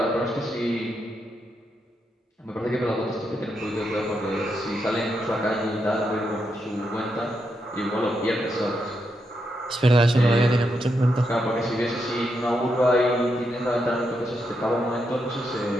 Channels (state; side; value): normal; both; correlation 0.83